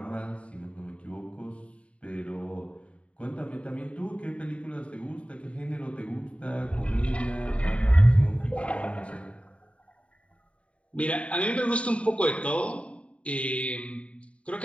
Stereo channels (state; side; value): late; right; 0.063 ms